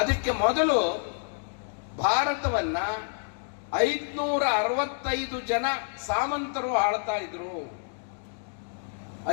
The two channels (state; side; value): silent; right; digital silence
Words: ಅದಕ್ಕೆ ಮೊದಲು ಭಾರತವನ್ನ 565 ಜನ ಸಾಮಂತರು ಆಳ್ತಾ ಇದ್ರು.